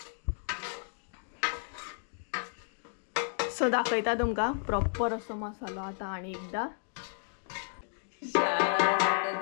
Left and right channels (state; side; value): silent; right; digital silence